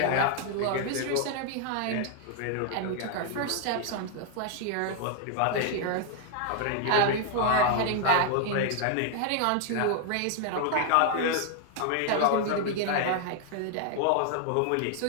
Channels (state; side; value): different; both; correlation 0.00